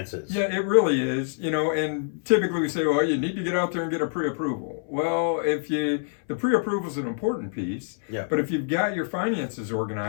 Yeah, it really is. And typically we say, well, you need to get out there and get a pre-approval. Well, the pre-approval is an important piece. Yeah. But if you've got your finances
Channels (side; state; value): right; silent; 61 dB below the other